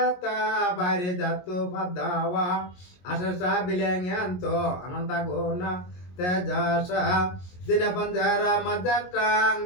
bayre jatuh padawa asasa bilengyanto anantaguna tejasa dina panjara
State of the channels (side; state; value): right; late; 22 ms